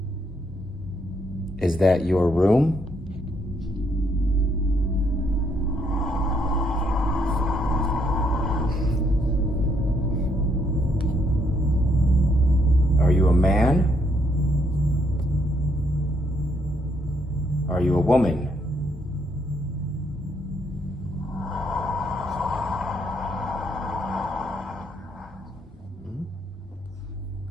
Is that your room? Are you a man? Are you a woman?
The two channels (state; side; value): normal; both; correlation 0.72